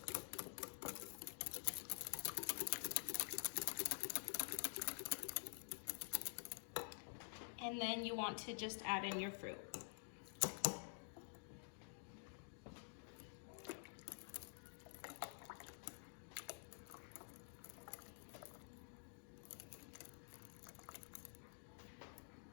And then you want to just add in your fruit.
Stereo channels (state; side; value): silent; right; digital silence